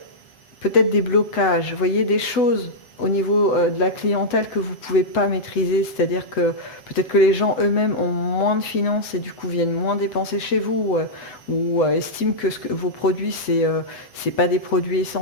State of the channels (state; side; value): late; right; 8.0 ms